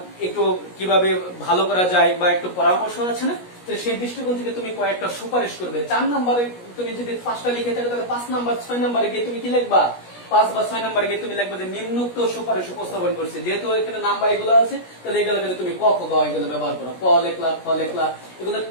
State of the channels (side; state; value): right; late; 17 ms